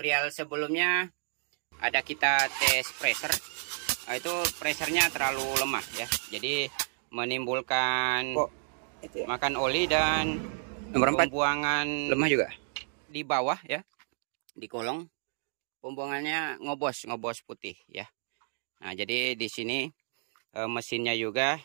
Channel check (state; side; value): silent; left; digital silence